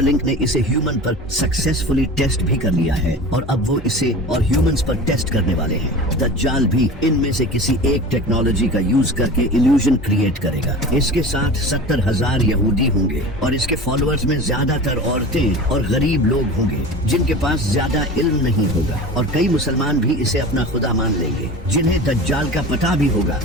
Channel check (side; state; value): both; normal; correlation 0.35